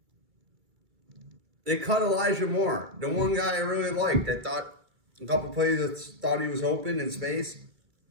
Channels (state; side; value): late; left; 2.3 ms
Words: They cut Elijah Moore, the one guy I really liked. I thought a couple plays that thought he was open in space.